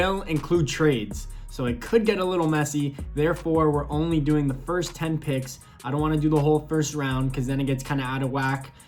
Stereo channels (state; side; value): identical; both; correlation 1.00